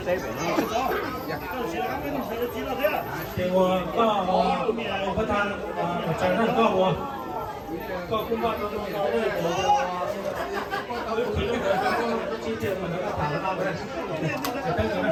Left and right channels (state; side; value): identical; both; correlation 1.00